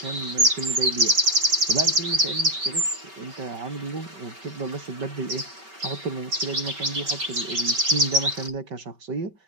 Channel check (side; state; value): left; late; 5.2 ms